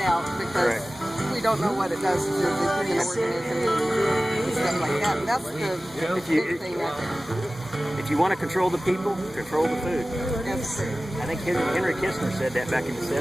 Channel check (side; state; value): both; normal; correlation 0.97